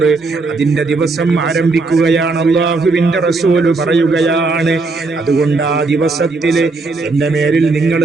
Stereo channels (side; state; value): left; quieter; 3.7 dB